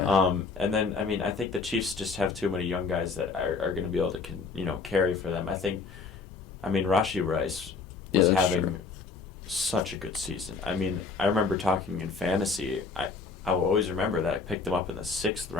And then I mean, I think the Chiefs just have too many young guys that are going to be able to carry for them. I mean, Rashee Rice was having such a good season. I mean, I remember talking in fantasy. I will always remember that I picked him up in the 6th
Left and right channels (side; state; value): right; quieter; 4.6 dB